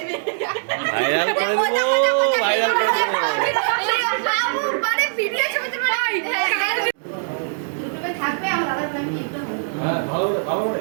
ভাইরাল করে দেবো, ভাইরাল করে দেবো। বাবু মানে ভিডিও ছবিতে মানে ইউটিউবে থাকবে আমার দাদার প্ল্যান কি একটু হ্যাঁ ভালো ভালো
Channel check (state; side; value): silent; left; digital silence